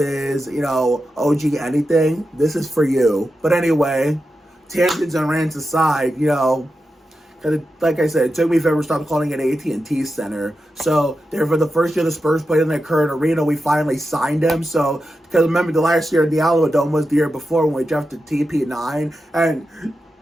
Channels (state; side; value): normal; both; correlation 0.90